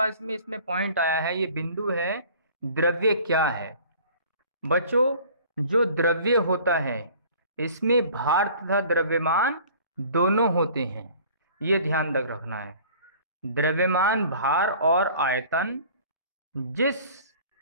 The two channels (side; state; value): both; inverted; correlation -0.49